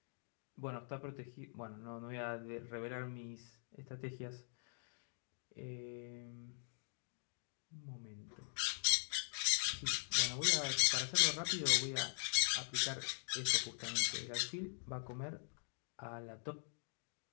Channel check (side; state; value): right; silent; digital silence